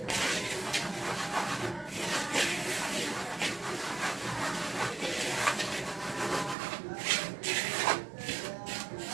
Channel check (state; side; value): drops out; left; at 6.6 s